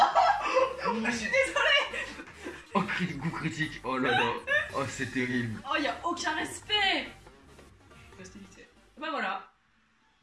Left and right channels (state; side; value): identical; both; correlation 1.00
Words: Je suis désolée. Oh, coup critique. Oh là là. Oh, c'est terrible. Oh, y'a aucun respect. Bah voilà.